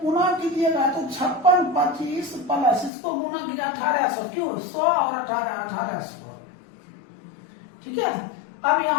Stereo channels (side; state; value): right; drops out; at 2.9 s